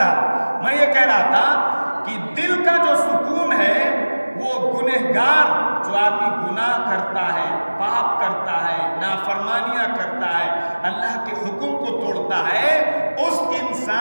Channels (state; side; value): inverted; both; correlation -1.00